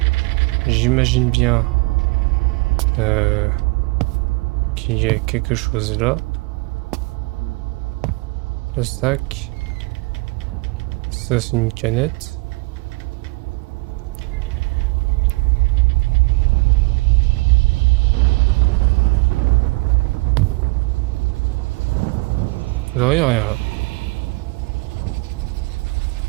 J'imagine bien qu'il y a quelque chose là. Le sac. Ça c'est une canette. Vous voyez rien là.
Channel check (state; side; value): quieter; left; 26.1 dB